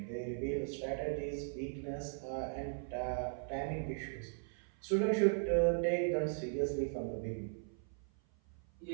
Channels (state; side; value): silent; left; 52 dB below the other